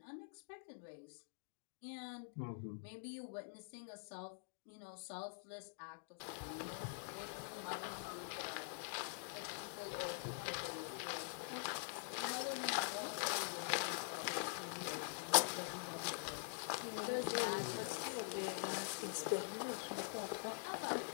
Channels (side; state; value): right; silent; digital silence